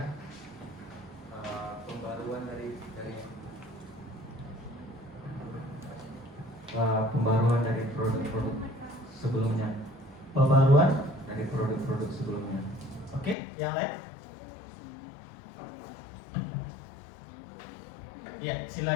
Pembaruan pembaruan dari produk-produk sebelumnya. Pembaruan Dari produk-produk sebelumnya. Oke, yang lain? Ya,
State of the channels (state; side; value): drops out; right; at 13.4 s